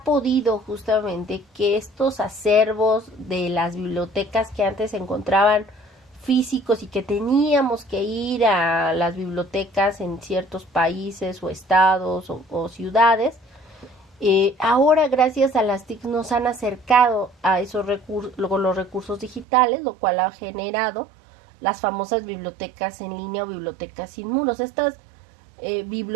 podido justamente que estos acervos de las bibliotecas que antes se encontraban físicos y que teníamos que ir a las bibliotecas en ciertos países o estados o ciudades, ahora gracias a las TIC nos han acercado a esos los recursos digitales, lo cual ha generado las famosas bibliotecas en línea o bibliotecas sin muros. Estas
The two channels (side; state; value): left; drops out; at 19.5 s